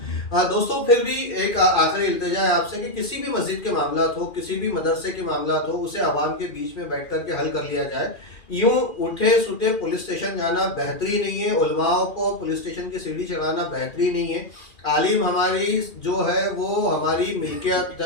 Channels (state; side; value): late; right; 2.4 ms